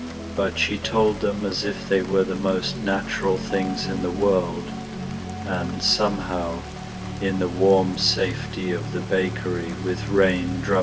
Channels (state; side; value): identical; both; correlation 1.00